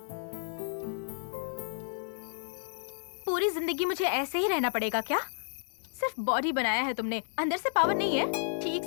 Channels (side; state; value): right; silent; digital silence